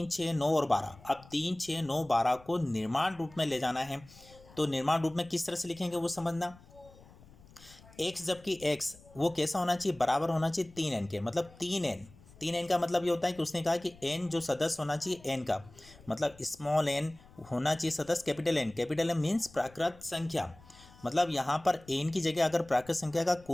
6, 9 और 12। अब 3, 6, 9, 12 को निर्माण रूप में ले जाना है। तो निर्माण रूप में किस तरह से लिखेंगे वो समझना। x जबकि x वो कैसा होना चाहिए, बराबर होना चाहिए 3n के, मतलब 3n का मतलब ये होता है कि उसने कहा कि n जो सदस्य होना चाहिए n का, मतलब स्मॉल n होना चाहिए सदस्य capital N। Capital M means प्राकृत संख्या। मतलब यहाँ पर n की जगह अगर प्राकृत संख्या का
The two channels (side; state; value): left; noise; rumble, 23 dB below the sound